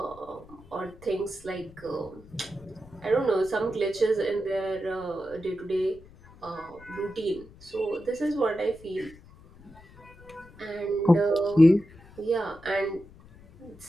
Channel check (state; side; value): noise; left; rumble, 22 dB below the sound